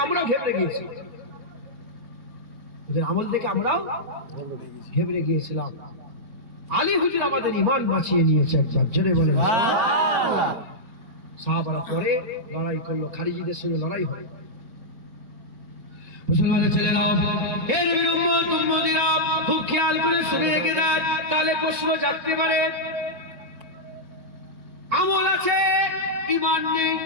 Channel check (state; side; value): late; left; 4.4 ms